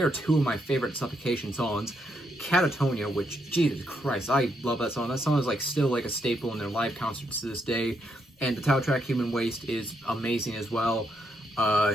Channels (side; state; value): both; normal; correlation 0.77